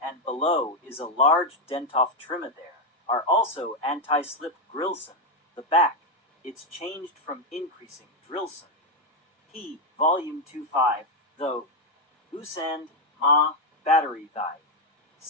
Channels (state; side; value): normal; both; correlation 0.03